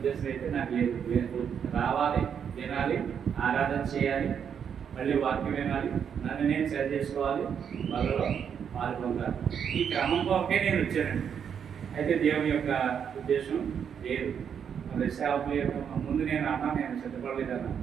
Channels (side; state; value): left; quieter; 7.7 dB